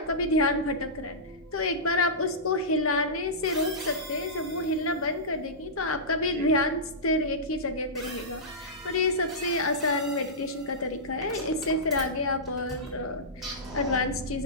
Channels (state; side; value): normal; both; correlation -0.16